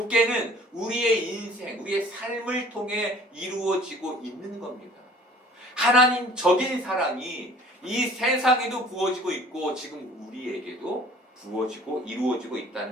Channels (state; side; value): normal; both; correlation 0.51